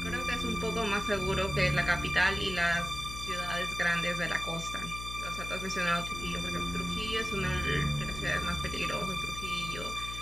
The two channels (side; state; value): left; noise; hum, 9 dB below the sound